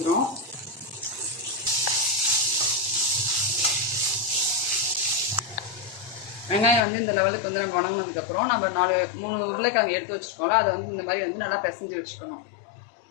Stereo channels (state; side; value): drops out; right; at 6.8 s